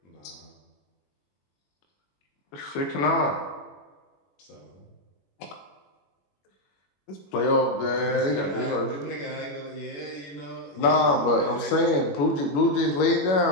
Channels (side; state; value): right; late; 21 ms